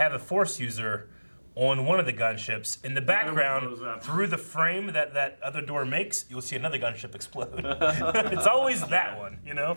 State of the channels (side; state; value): both; inverted; correlation -1.00